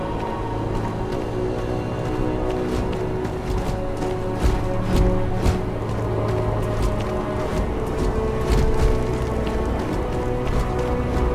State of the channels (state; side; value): identical; both; correlation 1.00